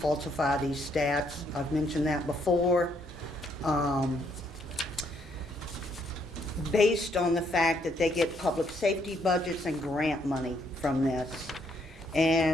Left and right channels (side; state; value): both; normal; correlation 0.71